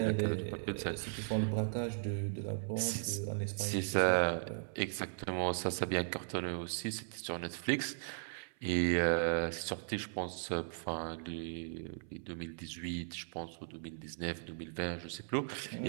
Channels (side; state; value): left; silent; 53 dB below the other